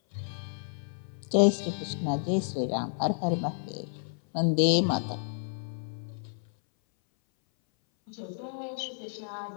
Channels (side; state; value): right; silent; 57 dB below the other